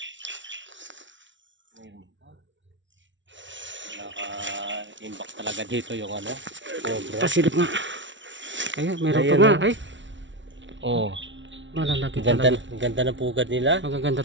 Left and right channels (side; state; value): left; late; 0.55 ms